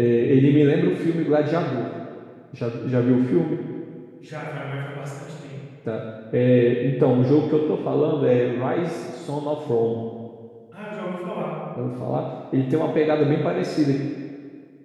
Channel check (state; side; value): identical; both; correlation 1.00